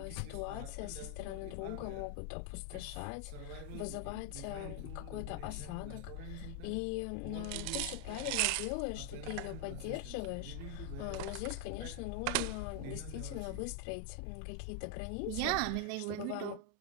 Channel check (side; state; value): both; different; correlation 0.00